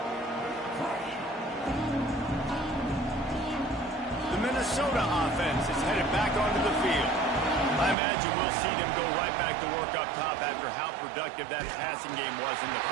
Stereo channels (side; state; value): left; drops out; at 8.0 s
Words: The Minnesota offense is headed back onto the field. I imagine we'll see them go right back to work up top after how productive that passing game was in the